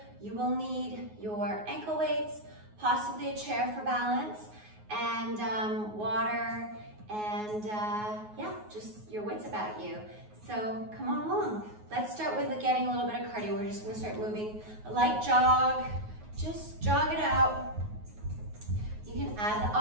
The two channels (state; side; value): late; left; 9.5 ms